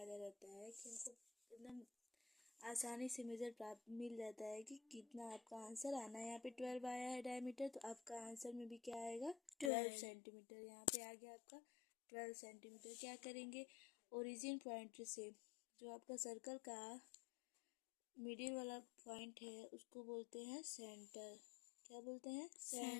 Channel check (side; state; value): right; drops out; at 9.7 s